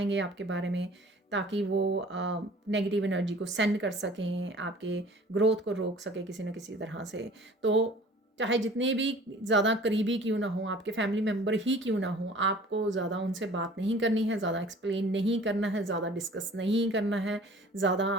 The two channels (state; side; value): normal; both; correlation 0.48